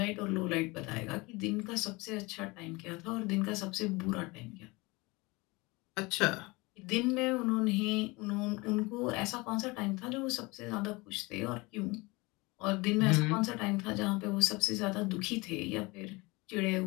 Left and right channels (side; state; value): right; quieter; 24.2 dB